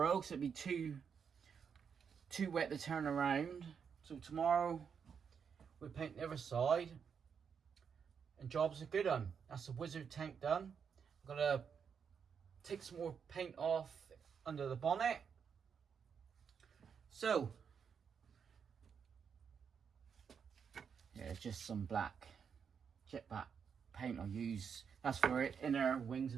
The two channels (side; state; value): left; quieter; 6.8 dB